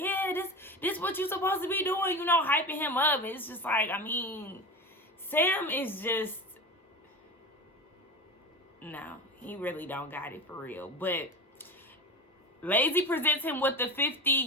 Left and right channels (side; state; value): both; normal; correlation 0.27